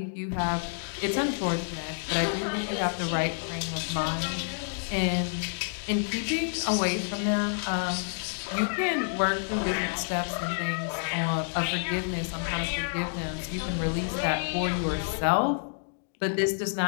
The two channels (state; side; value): silent; right; digital silence